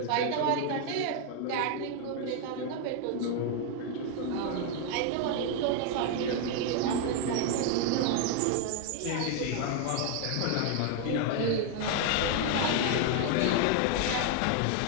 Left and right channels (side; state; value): both; different; correlation 0.01